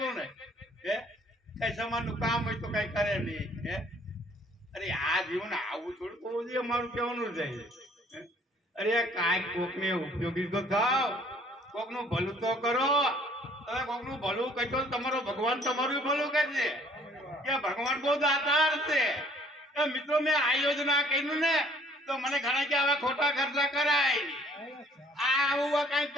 ને, હે કઈ સમાજનું કામ હોય તો કઈ કરે નહીં. હે અરે આ જીવન આવું થોડું હોવું જોઈએ, મારું કહેવાનું જાય છે. અરે કાંઈક કોકને ઉપયોગી તો થાવ, કોકનું ભલું તો કરો. તમે કોકનું ભલું કરશો તમારો ભગવાન તમારું ભલું કરશે. કે ભગવાન બહુ દાતાર છે. મિત્રો મેં આ યોજના કર્યું ને તો મને ઘણા કે આવા ખોટા ખર્ચા કરાય, આવું કઈ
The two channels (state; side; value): normal; both; correlation 0.58